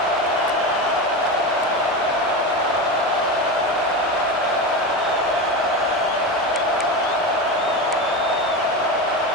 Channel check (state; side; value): normal; both; correlation 0.21